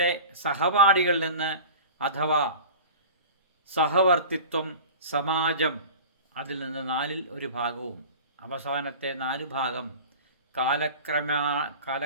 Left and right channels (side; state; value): both; inverted; correlation -0.37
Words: സഹപാഠികളിൽ നിന്ന് അഥവാ സഹവർത്തിത്വം, സമാജം, അതിൽ നിന്ന് നാലിൽ ഒരു ഭാഗവും, അവസാനത്തെ 4 ഭാഗം